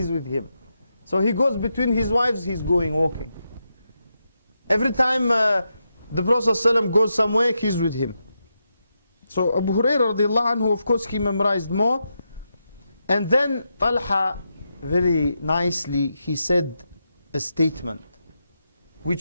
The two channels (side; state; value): both; inverted; correlation -0.85